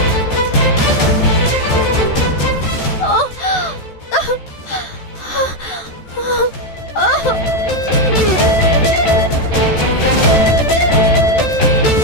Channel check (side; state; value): right; late; 14 ms